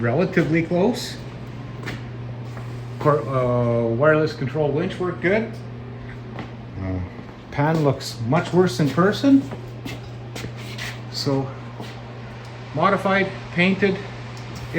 close. Wireless control winch worked good. Pan looks much worse in person. So modified,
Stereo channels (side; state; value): both; identical; correlation 1.00